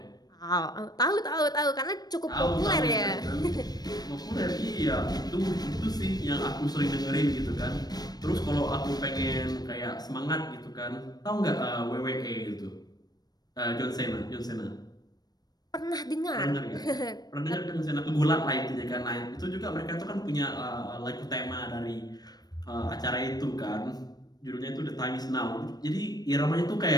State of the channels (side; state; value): right; late; 0.19 ms